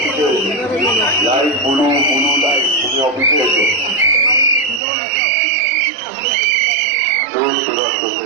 লাইভ বলু বলু লাইভ, তুমি অফিসে এসো।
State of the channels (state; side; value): drops out; left; at 4.8 s